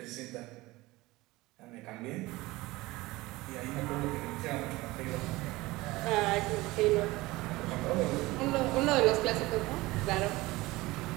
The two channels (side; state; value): left; quieter; 20.2 dB